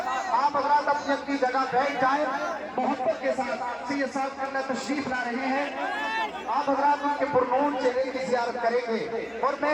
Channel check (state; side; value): identical; both; correlation 1.00